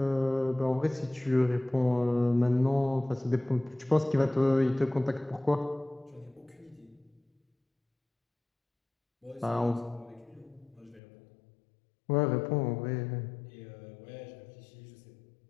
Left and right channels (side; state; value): right; drops out; at 11.0 s